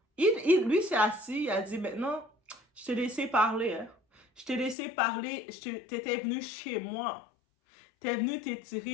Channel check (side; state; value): right; drops out; at 4.8 s